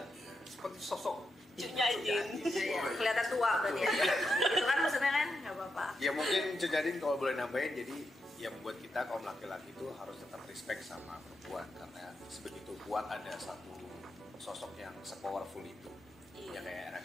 Seperti sosok Cunya Jin. Iya, kelihatan tua berarti ya. Gitu kan maksudnya kan? Gak apa-apa. Ya mungkin Cudadin kalau boleh nambahin, jadi yang membuat kita kaum laki-laki itu harus tetap respect sama perempuan karena sebegitu kuat ada satu sosok yang se-powerful itu. Iya. Ya kayak Era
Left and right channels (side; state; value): both; normal; correlation 0.85